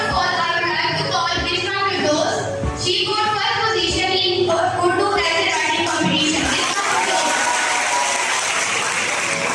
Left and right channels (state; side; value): identical; both; correlation 1.00